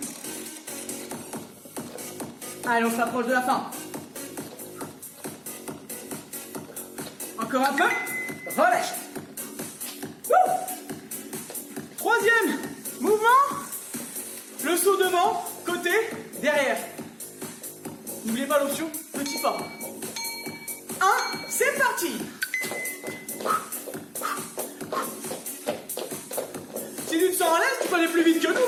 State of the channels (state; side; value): identical; both; correlation 1.00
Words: Allez, on s'approche de la fin. Encore un peu. Relâche. Wouh. Troisième mouvement. Le saut devant, côté, derrière. N'oubliez pas l'option petit pas. 1, c'est parti. Si tu te sens à l'aise, peux aller plus vite que nous,